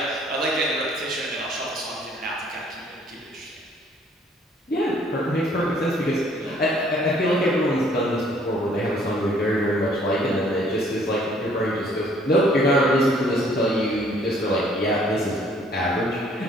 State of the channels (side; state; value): both; normal; correlation 0.60